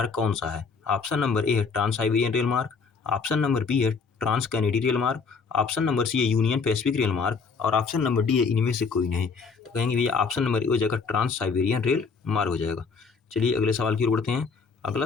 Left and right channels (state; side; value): quieter; right; 5.0 dB